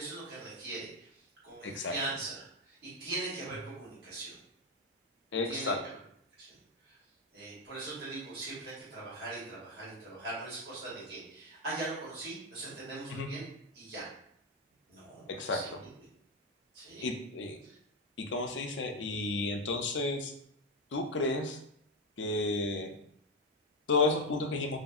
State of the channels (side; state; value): both; normal; correlation 0.09